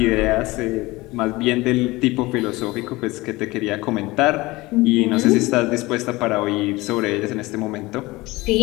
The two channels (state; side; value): quieter; right; 21.0 dB